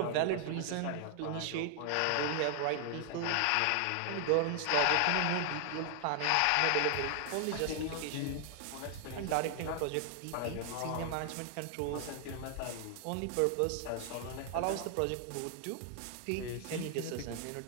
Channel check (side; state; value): both; different; correlation 0.00